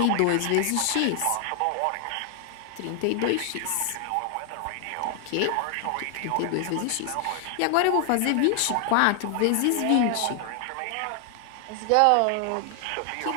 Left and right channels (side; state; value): both; different; correlation 0.00